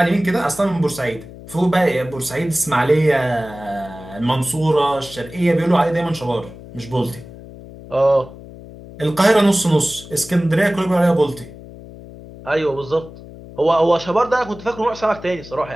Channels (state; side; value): noise; left; hum, 17 dB below the sound